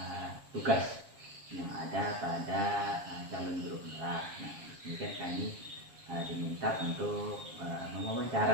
tugas yang ada pada calon guru penggerak. Nah, ini kan kami diminta untuk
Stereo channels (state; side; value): late; left; 7.4 ms